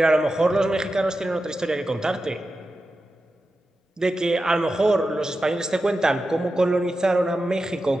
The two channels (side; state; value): both; normal; correlation 0.91